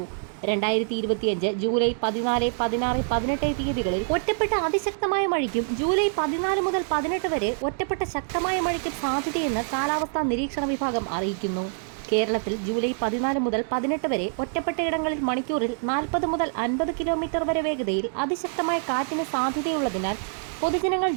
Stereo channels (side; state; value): left; silent; digital silence